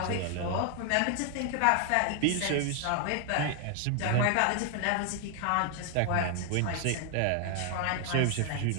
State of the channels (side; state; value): both; different; correlation 0.00